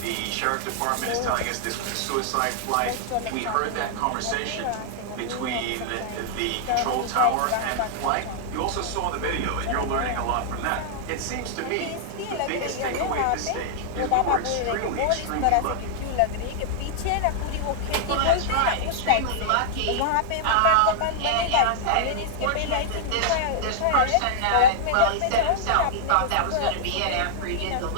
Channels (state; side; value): different; both; correlation -0.01